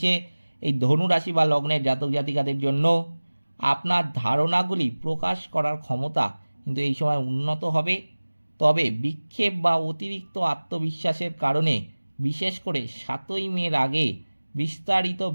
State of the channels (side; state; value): both; inverted; correlation -1.00